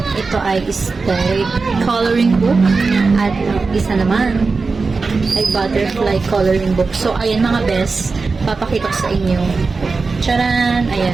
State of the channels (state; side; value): quieter; left; 4.2 dB